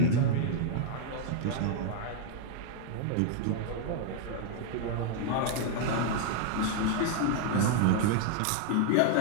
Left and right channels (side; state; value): both; different; correlation 0.00